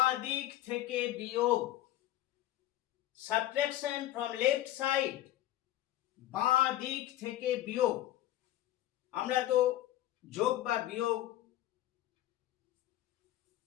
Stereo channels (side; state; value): right; quieter; 14.1 dB